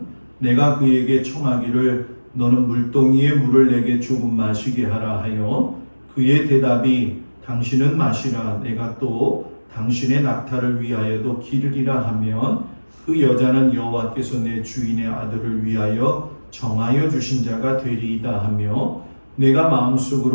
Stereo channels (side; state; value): both; inverted; correlation -1.00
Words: 내가 그에게 청하기를 너는 물동이의 물을 내게 조금 마시게 하라 하여 그의 대답이 당신은 마시라 내가 또 당신의 낙타를 위하여도 기르리라 하면 그 여자는 여호와께서 내 주인의 아들을 위하여 정하여 주신 자가 되리이다 하며 내가